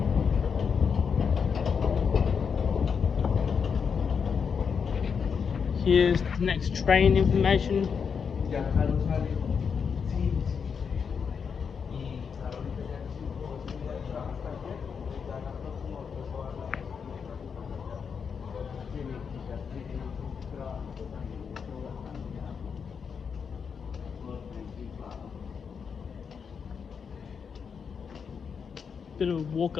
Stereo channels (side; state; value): right; quieter; 6.3 dB